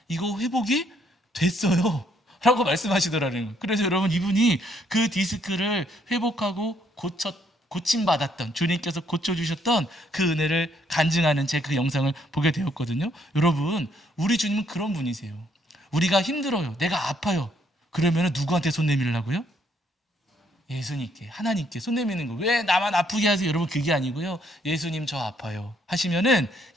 이거 회복이 됐어요 라고 말씀하시더라는 거예요. 그래서 여러분 이분이 그 디스크를 회복하고 고침받았던 주님께서 고쳐주셨던 그 은혜를 간증하는 제 그 영상을 보게 되었거든요. 여러분 우리 주님은 그런 분이세요. 우리가 힘들어요, 내가 아파요, 그러면 누구한테 손 내밀라고요? 예수님께, 하나님께 손 내미는 거. 왜 나만 아프게 하세요? 여러분 그게 아니고요. 예수님 저 아파요 하시면은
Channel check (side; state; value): both; normal; correlation 0.70